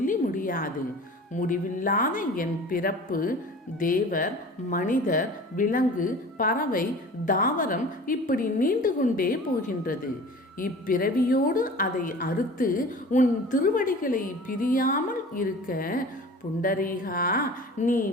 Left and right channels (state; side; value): normal; both; correlation 0.41